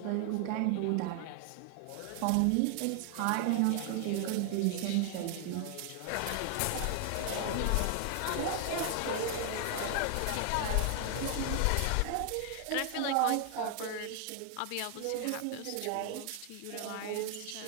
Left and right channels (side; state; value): both; different; correlation 0.00